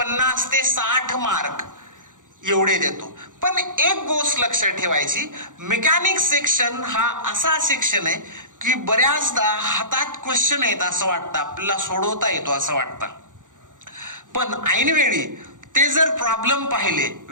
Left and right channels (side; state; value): left; late; 0.87 ms